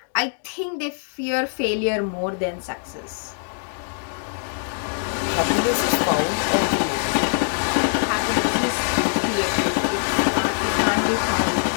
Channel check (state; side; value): silent; right; 63 dB below the other